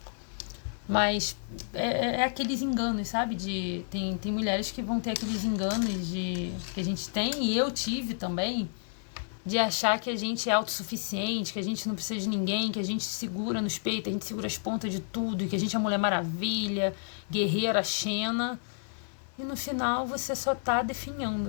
Mas é aqueles enganos, sabe? Tem mulheres que vão ter aqueles enganos que a gente tem, e eu tive também, de achar que a gente é autossuficiente, que a gente não precisa de ninguém, que a gente segura nos peitos, a gente segura as pontas de tudo, e que a gente é a Mulher Maravilha, guerreira, Xena. E no final você só tá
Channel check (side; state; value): right; silent; digital silence